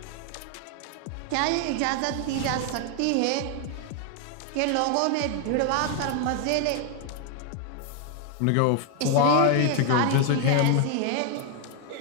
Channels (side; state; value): both; different; correlation 0.01